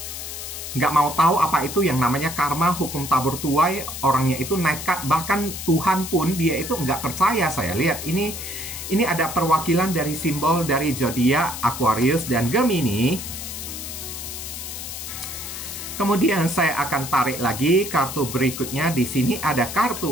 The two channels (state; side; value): noise; left; hiss, 8 dB below the sound